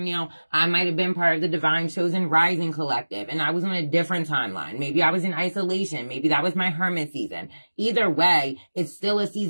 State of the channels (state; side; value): inverted; both; correlation -1.00